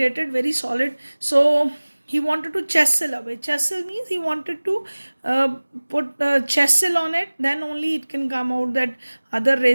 very solid. So he wanted to chisel away. Chisel means he wanted to put chisel on it, then only it can come out. That other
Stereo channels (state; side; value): inverted; both; correlation -1.00